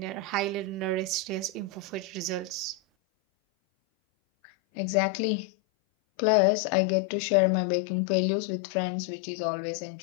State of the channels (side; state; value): right; drops out; at 2.8 s